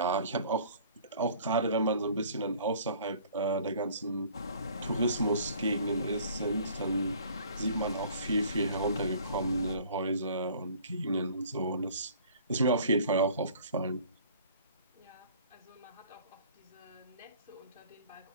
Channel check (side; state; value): both; inverted; correlation -0.52